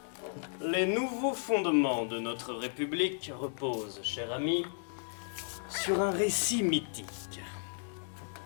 Les nouveaux fondements de notre République reposent, cher ami, sur un récit mythique.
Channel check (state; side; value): silent; right; digital silence